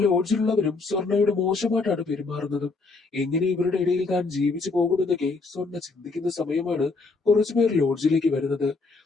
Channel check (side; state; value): right; quieter; 3.9 dB